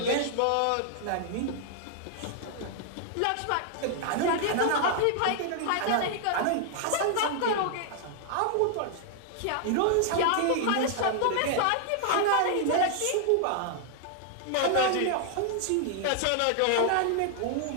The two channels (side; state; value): both; different; correlation 0.00